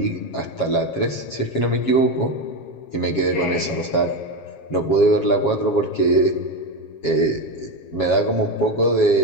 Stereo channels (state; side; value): late; right; 7.3 ms